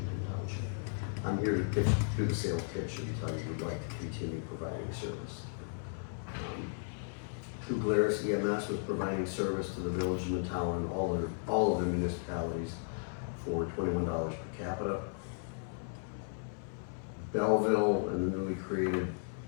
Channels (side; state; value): right; silent; 54 dB below the other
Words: Township. I'm here to do the sales pitch and tell you we'd like to continue providing service. New Glarus EMS was providing service to the village and the town and all of the municipalities for $21 per capita. Belleville and the newly created